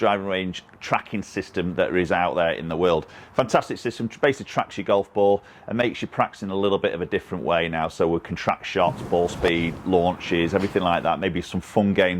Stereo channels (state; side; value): identical; both; correlation 1.00